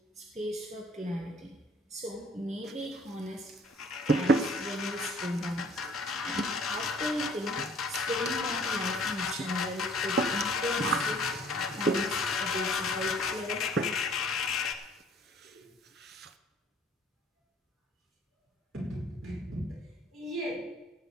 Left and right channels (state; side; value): normal; both; correlation 0.55